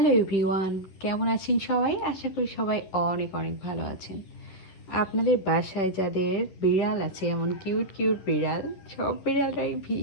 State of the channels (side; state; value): right; late; 11 ms